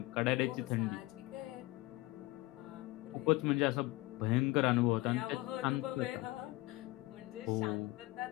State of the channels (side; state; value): right; quieter; 20.1 dB